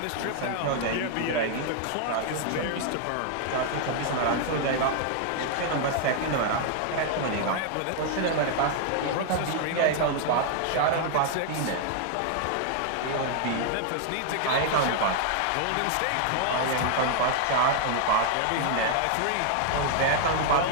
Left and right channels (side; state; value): both; different; correlation 0.00